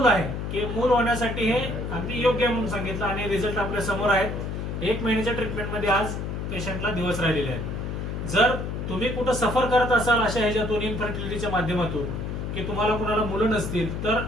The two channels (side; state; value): left; noise; hum, 4 dB below the sound